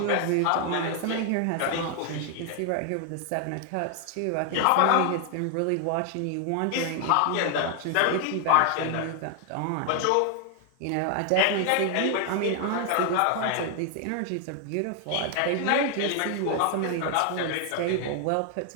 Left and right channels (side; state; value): both; different; correlation 0.00